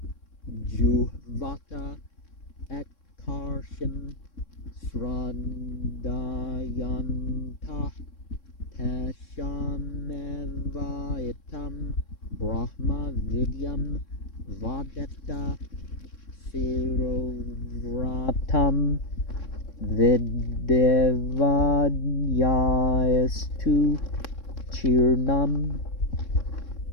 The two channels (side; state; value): right; late; 3.6 ms